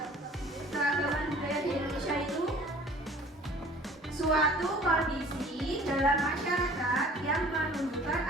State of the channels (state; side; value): normal; both; correlation 0.49